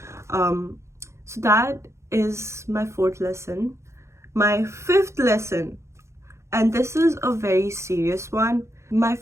So that is my fourth lesson. My fifth lesson, and this is a very serious one. My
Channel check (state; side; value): late; left; 0.14 ms